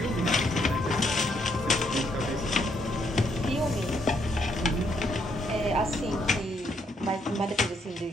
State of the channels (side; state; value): both; normal; correlation 0.73